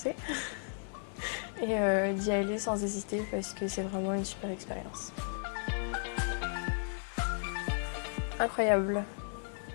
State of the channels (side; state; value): right; silent; 55 dB below the other